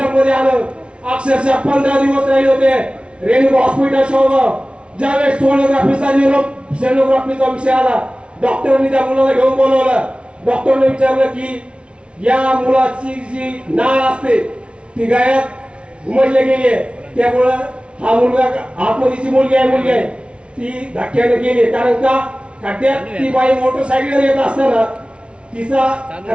आलं, अक्षरशः 15 दिवस राहिले होते रेणुका हॉस्पिटल शेवगाव। ज्यावेळेस सोनोग्राफीचा विषय आला, डॉक्टरांनी त्या मुलाला घेऊन बोलवलं, डॉक्टरने विचारलं की या मुलाची जी नाळ असते ती गायत उमटले गेली त्यामुळं हा मुलगा आतमधीची मुलगी आहे ती धक्क्याने गेली कारण का खड्ड्यात ती बाई मोटरसायकल येत असताना तिचा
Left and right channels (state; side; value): late; left; 0.059 ms